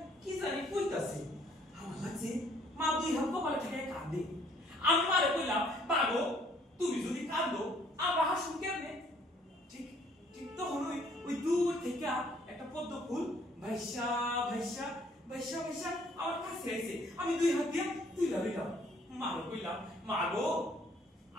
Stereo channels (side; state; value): both; normal; correlation 0.62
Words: কি জানি কইতাছে। আমার লাগছে মা দুই হাত কপালে ঠেকে কাঁদে। আমি মারে কইলাম, বাগো তুমি যদি কাঁদো আমরা হাসুন কেমনে? ঠিক ঠিক তখন ওই দূর থেকে একটা পদ্ম ফুল ভাইসা ভাইসা ভাইসা ভাইসা আমার কাছে আইছে। আমি দুই হাত দিয়ে তুইলা লইলাম। মারে কইলাম, মাগো